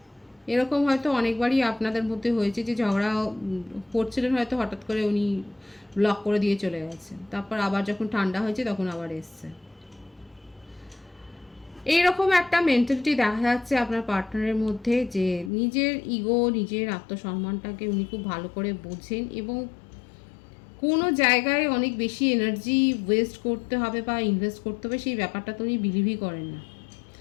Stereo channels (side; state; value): right; drops out; at 15.5 s